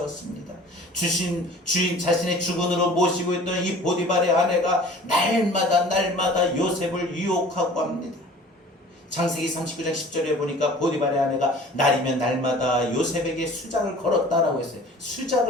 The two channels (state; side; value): normal; both; correlation 0.46